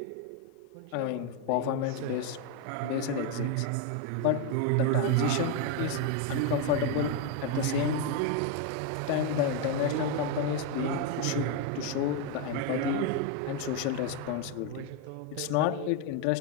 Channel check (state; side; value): different; both; correlation 0.02